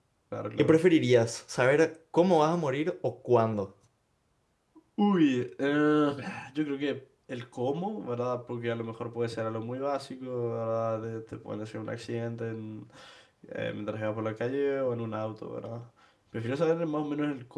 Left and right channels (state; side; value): identical; both; correlation 1.00